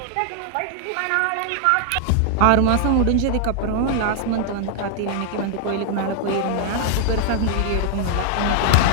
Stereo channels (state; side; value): different; both; correlation 0.00